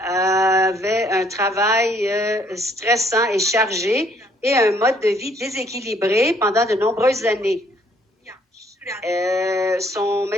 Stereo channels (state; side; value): normal; both; correlation 0.64